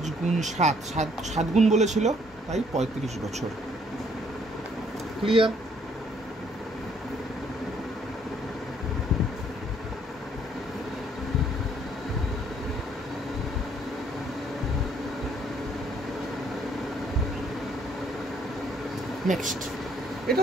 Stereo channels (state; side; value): normal; both; correlation 0.65